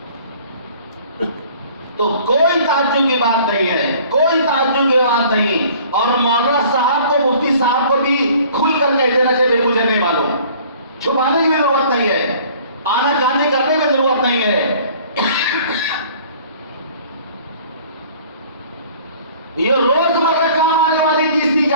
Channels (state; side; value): inverted; both; correlation -0.51